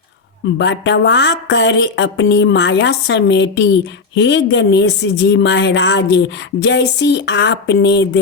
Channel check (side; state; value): right; quieter; 4.4 dB